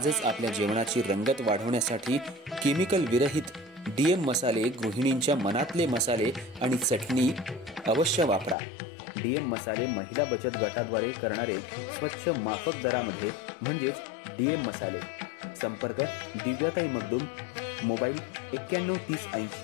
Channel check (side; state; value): right; drops out; at 8.6 s